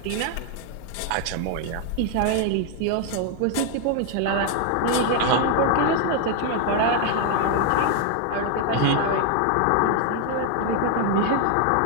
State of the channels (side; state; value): both; different; correlation 0.00